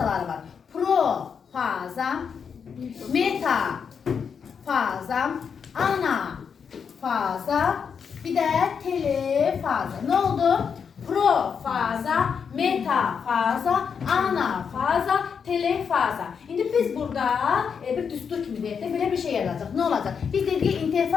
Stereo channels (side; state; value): right; quieter; 6.6 dB